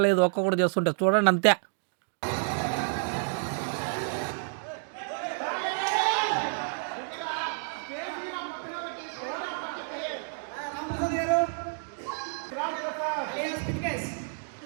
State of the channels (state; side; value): silent; left; digital silence